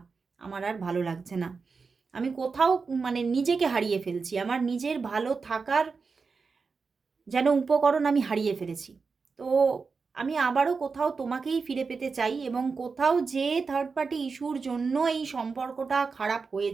আমার আর ভালো লাগছে না। আমি কোথাও মানে নিজেকে হারিয়ে ফেলছি, আমার নিজের ভালো থাকার যেন উপকরণ আমি হারিয়ে ফেলেছি। তো আমি আবারও কোথাও তোমাকেই ফিরে পেতে চাই, এবং কোথাও যে থার্ড পার্টি ইস্যুর জন্য এই সম্পর্কটা খারাপ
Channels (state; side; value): quieter; left; 4.8 dB